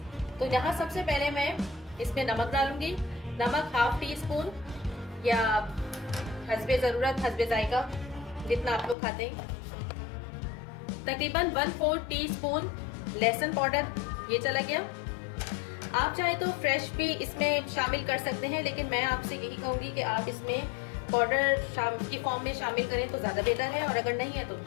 तो यहाँ सबसे पहले मैं इसमें नमक डालूंगी। नमक हाफ टी स्पून या हस्बे ज़रूरत, हस्बे जायका, जितना आप लोग खाते हैं। तकरीबन 1/4 टी स्पून लहसुन पाउडर, ये चला गया। आप चाहे तो फ्रेश भी इसमें शामिल कर सकते हैं, लेकिन मैं आपसे यही कहूँगी कि आप इसमें पाउडर की फॉर्म में शामिल करें तो ज़्यादा बेहतर है, और अगर नहीं है तो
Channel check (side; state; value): right; drops out; at 9.0 s